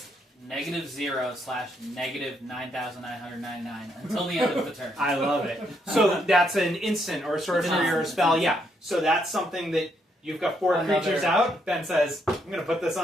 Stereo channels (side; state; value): both; normal; correlation 0.75